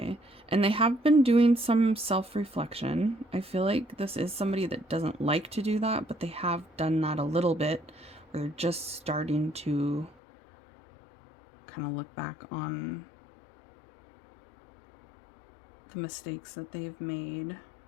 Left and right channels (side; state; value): right; drops out; at 10.2 s